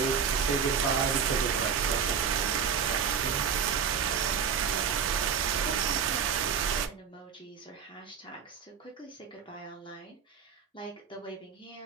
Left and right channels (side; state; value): left; quieter; 7.0 dB